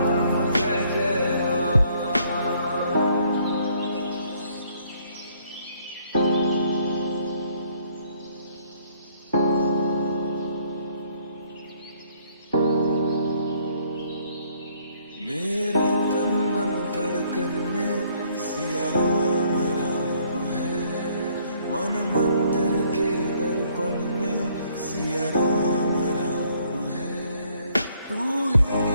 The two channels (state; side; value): inverted; both; correlation -0.64